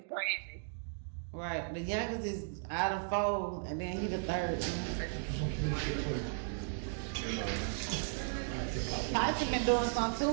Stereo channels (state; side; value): silent; left; digital silence